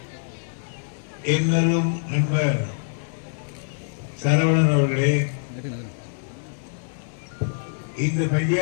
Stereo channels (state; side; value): silent; right; digital silence